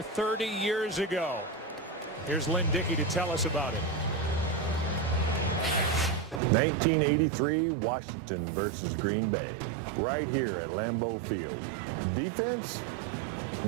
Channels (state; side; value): drops out; left; at 6.4 s